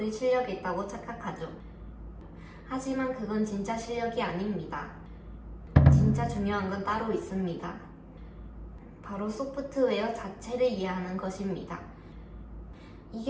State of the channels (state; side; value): identical; both; correlation 1.00